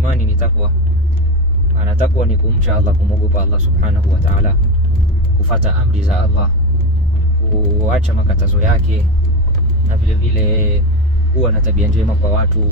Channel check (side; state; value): both; normal; correlation 0.17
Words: ni takwa. Maana takwa ni kumcha Allah, kumogopa Allah subhanahu wa ta'ala, kufuata amri za Allah, kuacha makatazo yake, na vile vile kuwa na tabia njema kwa watu,